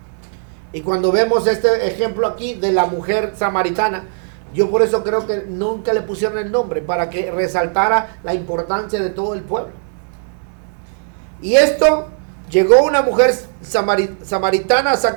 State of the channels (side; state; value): left; silent; 62 dB below the other